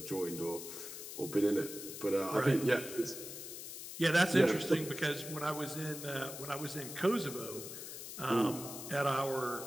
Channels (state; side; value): noise; left; hiss, 9 dB below the sound